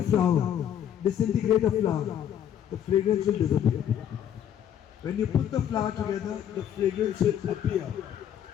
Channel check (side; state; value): right; quieter; 9.8 dB